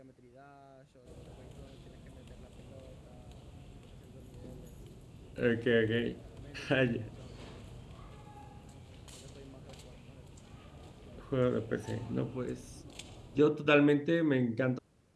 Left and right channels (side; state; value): both; identical; correlation 1.00